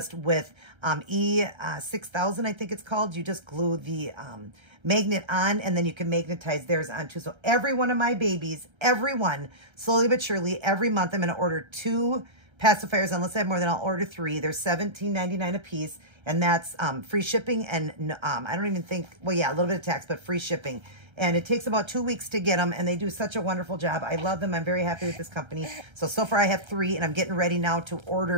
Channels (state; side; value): late; left; 1.3 ms